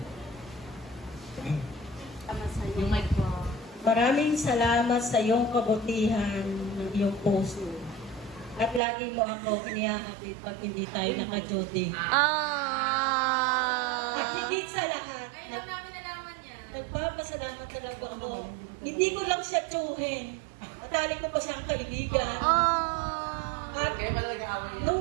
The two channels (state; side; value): drops out; left; at 8.8 s